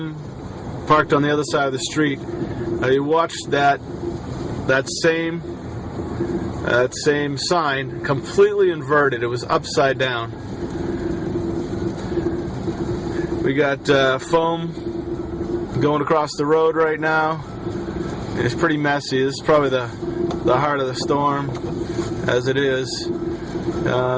parked on the other side of the street. I watched that same sign completely inverted. It was upside down. We got foam going across the road right now. It's pretty messy. This is probably the heart of the storm as it is.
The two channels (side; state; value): both; identical; correlation 1.00